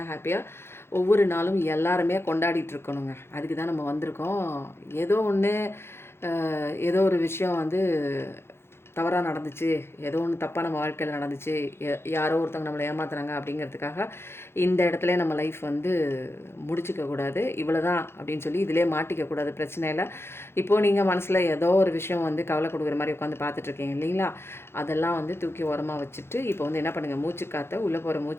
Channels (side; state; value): right; late; 0.12 ms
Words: ஹாப்பியாக ஒவ்வொரு நாளும் எல்லாருமே கொண்டாடிட்டு இருக்கணுங்க. அதுக்கு தான் நம்ம வந்திருக்கோம். ஏதோ ஒன்று ஏதோ ஒரு விஷயம் வந்து தவறாக நடந்துச்சு, ஏதோ ஒன்று தப்பாக நம்ம வாழ்க்கையில் நடந்துச்சு, யாரோ ஒருத்தவங்க நம்மளை ஏமாத்துறாங்க அப்படிங்கிறதுக்காக இந்த இடத்துல நம்ம லைஃப் வந்து முடிச்சிக்கக்கூடாது. இவ்வளோ தான் அப்படின்னு சொல்லி இதிலே மாட்டிக்கக்கூடாது. பிரச்சனை இல்லை. இப்போது நீங்கள் மனசில் ஏதோ ஒரு விஷயம் வந்து கவலை கொடுக்குற மாதிரி உட்காந்து பார்த்துட்ருக்கீங்க இல்லைங்களா? அதெல்லாம் வந்து தூக்கி ஓரமாக வச்சுட்டு இப்போ வந்து என்ன பண்ணுங்கள், மூச்சுக்காற்றை உள்ளே போகிற